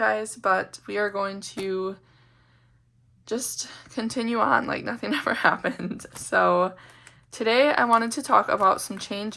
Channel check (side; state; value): both; identical; correlation 1.00